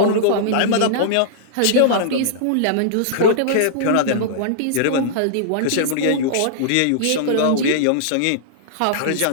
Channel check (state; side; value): different; both; correlation -0.02